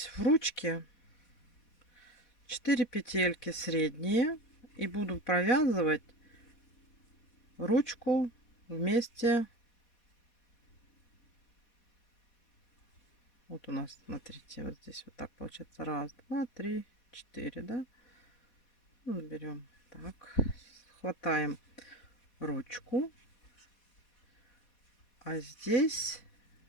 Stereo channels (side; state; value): right; late; 4.2 ms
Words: в ручке 4 петельки средние и буду провязывать ручку вместе. Вот у нас, смотрите, вот здесь вот так получается. Раз, два, три, 4, да? Ну, берем так, хватаем ручку, а здесь